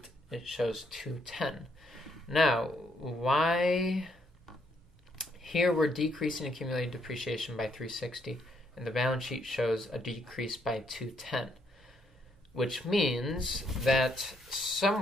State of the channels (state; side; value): normal; both; correlation 0.72